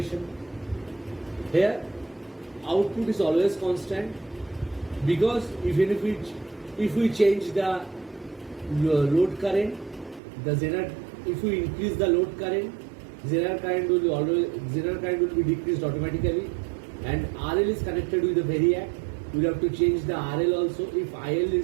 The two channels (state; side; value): drops out; left; at 10.2 s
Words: Here output is always constant, because if we change the load current, if we increase the load current, Zener current will be decreased automatically, and RL is connected with the variac. We have to change the RL also. If IL